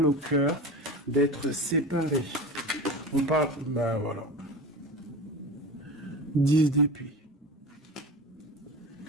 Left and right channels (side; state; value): both; normal; correlation 0.30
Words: au cœur d'être séparés. On parle, ben voilà. 10 d'épée.